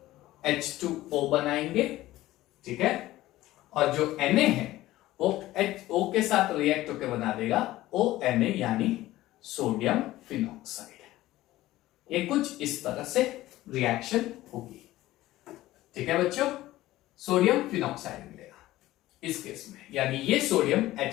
H2O बनाएंगे, ठीक है, और जो Na है वो O के साथ रिएक्ट होकर बना देगा ONA यानी सोडियम फिनॉक्साइड। ये कुछ इस तरह से रिएक्शन होगी, ठीक है बच्चों, सोडियम फिनॉक्साइड मिलेगा इस केस में, यानी ये सोडियम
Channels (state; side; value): quieter; right; 16.2 dB